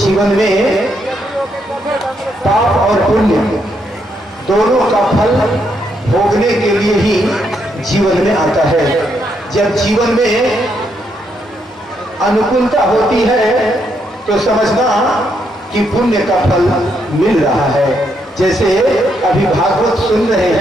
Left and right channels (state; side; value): normal; both; correlation 0.77